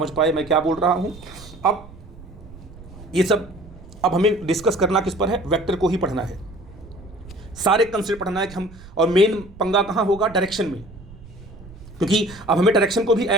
पाए मैं क्या बोल रहा हूँ। अब ये सब अब हमें डिस्कस करना किस पर है, वेक्टर को ही पढ़ना है, सारे कंसेप्ट पढ़ना है कि हम, और मेन पंगा कहाँ होगा, डायरेक्शन में। क्योंकि अब हमें डायरेक्शन को भी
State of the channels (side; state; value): right; noise; rumble, 19 dB below the sound